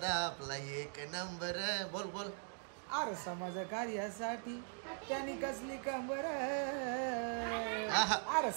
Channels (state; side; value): silent; left; 51 dB below the other